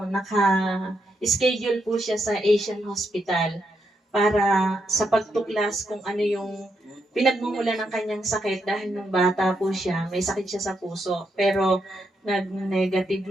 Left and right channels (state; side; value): normal; both; correlation 0.80